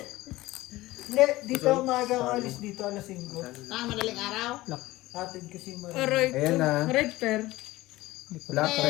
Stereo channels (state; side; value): quieter; right; 18.2 dB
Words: Hindi, dito maaga ako alis dito alas 5. Madaling araw? Atid kasi Marina. Aray Ayan ko. na. Red pair. Black